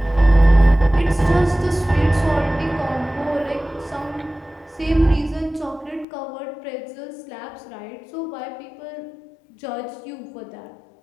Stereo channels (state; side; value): drops out; right; at 6.1 s